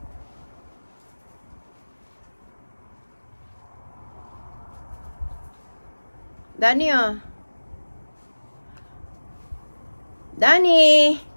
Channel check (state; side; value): inverted; both; correlation -1.00